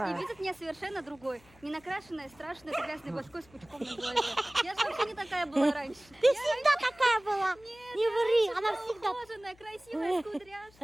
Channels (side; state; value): left; noise; hum, 27 dB below the sound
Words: и видят меня совершенно другой. Не накрашенная, страшная, с грязной башкой, с пучком на голове. Я же вообще не такая была раньше. Ты всегда такая была? Нет, Не ври, она всегда... ухоженная, красивая, с